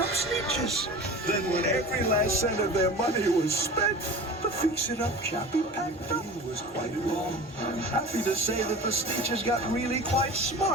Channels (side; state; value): both; normal; correlation 0.36